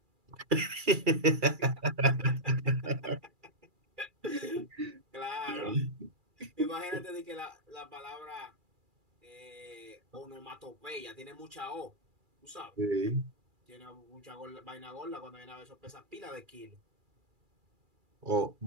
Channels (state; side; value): late; left; 2.4 ms